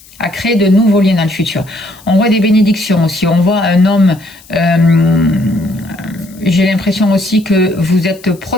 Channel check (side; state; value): left; noise; hiss, 25 dB below the sound